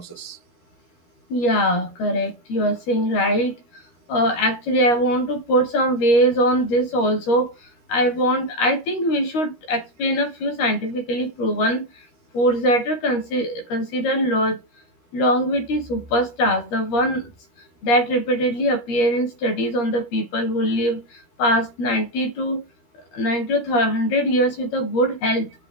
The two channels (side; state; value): right; late; 13 ms